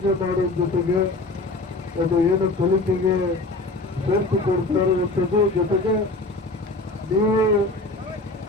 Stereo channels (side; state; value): right; quieter; 3.0 dB